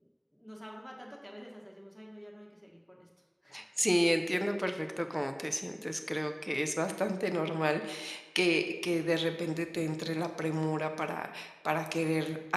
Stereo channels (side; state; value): both; identical; correlation 1.00